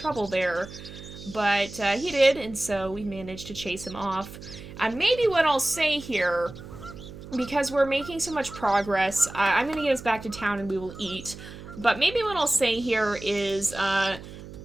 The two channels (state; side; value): noise; right; hum, 14 dB below the sound